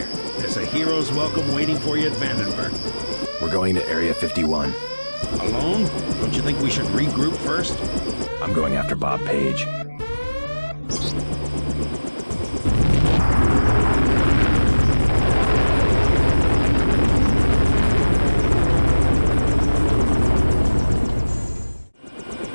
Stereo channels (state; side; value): inverted; both; correlation -1.00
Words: There's a hero's welcome waiting for you at Vandenberg. We're going to Area 51. Alone? Don't you think we should regroup first? I'm going after Bob Page.